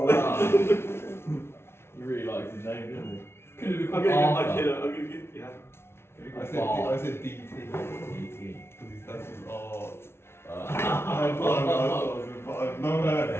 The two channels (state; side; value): late; right; 0.12 ms